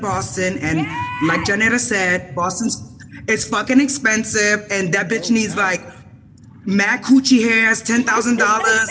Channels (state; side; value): identical; both; correlation 1.00